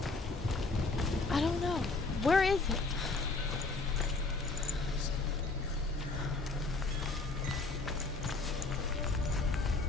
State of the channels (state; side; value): quieter; right; 3.7 dB